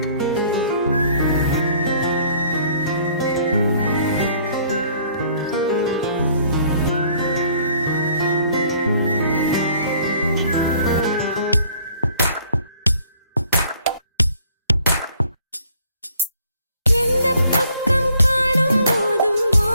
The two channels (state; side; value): inverted; both; correlation -0.60